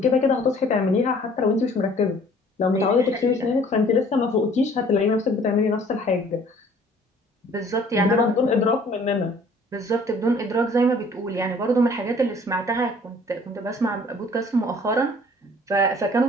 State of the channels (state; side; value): normal; both; correlation 0.54